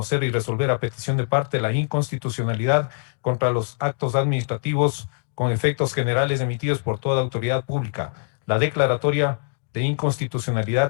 y resolver a petición de parte la inconstitucionalidad contra los actos administrativos con efectos generales emitidos por toda autoridad pública. La declaratoria de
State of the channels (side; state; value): right; silent; 63 dB below the other